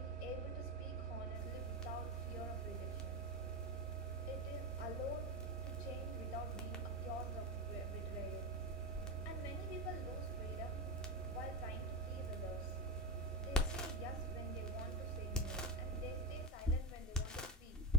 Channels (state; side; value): normal; both; correlation 0.16